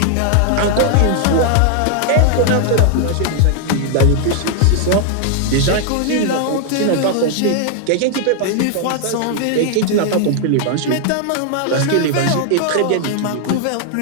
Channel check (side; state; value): both; different; correlation 0.00